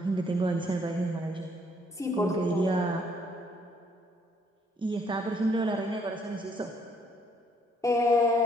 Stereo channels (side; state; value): both; normal; correlation 0.67